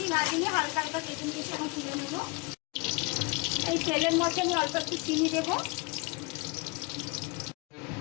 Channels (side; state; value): right; quieter; 28.4 dB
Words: ভাজিনি, হালকা হালকা ভেজে নিয়েছি। এখন তুলে নেবো। এই তেলের মধ্যে আমি অল্প একটু চিনি দেবো,